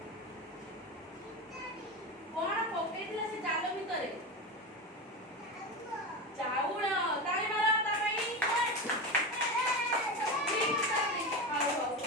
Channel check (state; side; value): normal; both; correlation 0.21